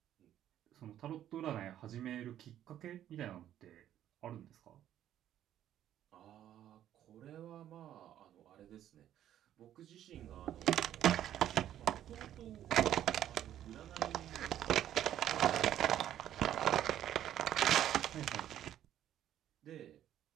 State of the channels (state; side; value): quieter; left; 11.5 dB